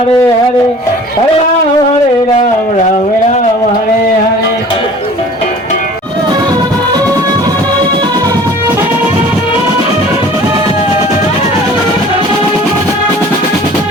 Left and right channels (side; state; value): both; normal; correlation 0.47